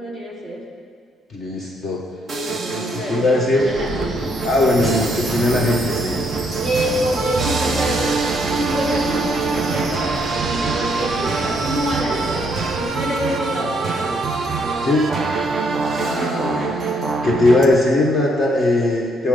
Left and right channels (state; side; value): normal; both; correlation 0.72